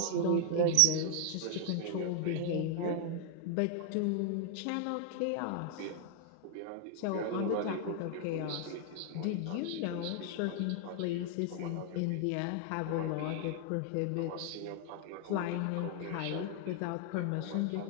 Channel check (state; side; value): different; both; correlation 0.00